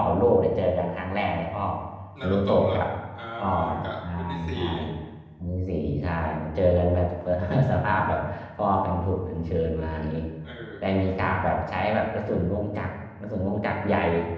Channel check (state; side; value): identical; both; correlation 1.00